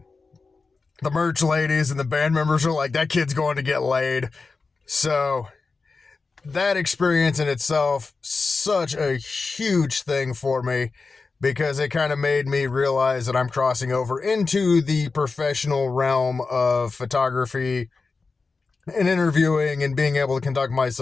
the merch ladies and the band members are like, "That kid's going to get laid." So that experience in itself, such a huge thing for me, because it kind of made me realize that I'm crossing over into the professional realm of photography and interviewing and being able to conduct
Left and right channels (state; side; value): quieter; right; 4.2 dB